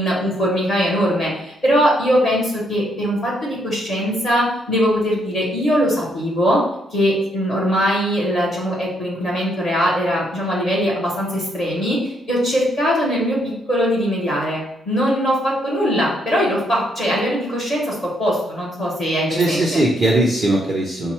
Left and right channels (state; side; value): normal; both; correlation 0.73